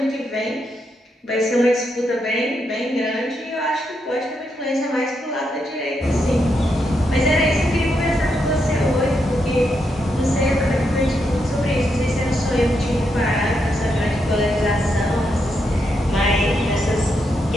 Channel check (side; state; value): both; normal; correlation 0.81